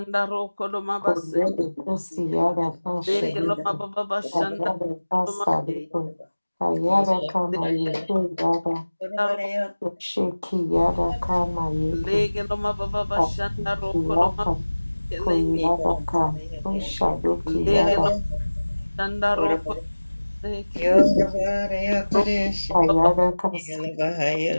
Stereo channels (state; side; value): inverted; both; correlation -1.00